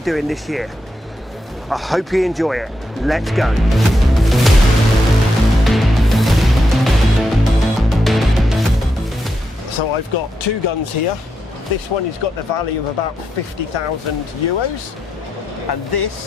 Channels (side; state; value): both; normal; correlation 0.84